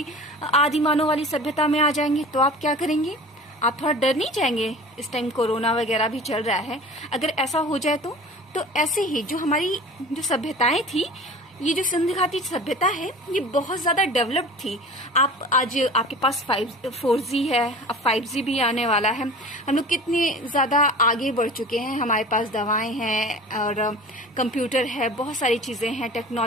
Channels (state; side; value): normal; both; correlation 0.39